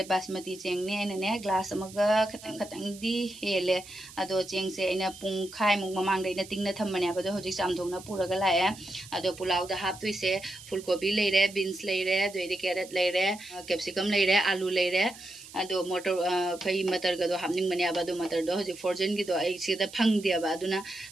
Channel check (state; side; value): noise; right; hiss, 18 dB below the sound